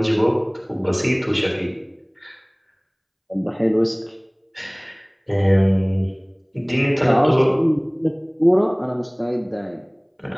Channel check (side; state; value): both; identical; correlation 1.00